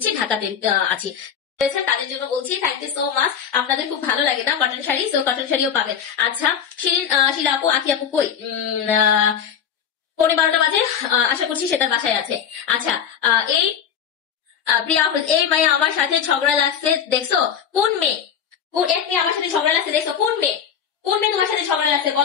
ঢাকাতে আছি। তাদের জন্য বলছি থ্যাংক ইউ সো মাচ। আপনাদের খুব ভালো লাগে না কটন শাড়ি, সো কটন শাড়িও পাবেন। আচ্ছা শিরিন শিলা আপু আখি আপু কই? 12:15 বাজে, আশা করছি সে তার বাসায় আছে। আচ্ছা এই প্রিয়া এই মেয়ে আমার সাথে ঝগড়া লাগছে দেখছো? কোন মেয়ে? এক মেয়ে আমার সাথে ঝগড়া লাগছে দেখছো? কোন মেয়ে তোমার সাথে ঝগড়া লাগছে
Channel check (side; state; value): right; quieter; 8.1 dB